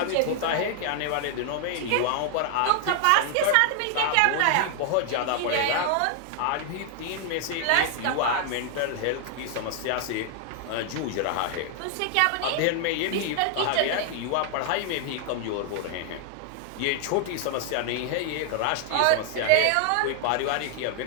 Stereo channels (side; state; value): both; different; correlation 0.00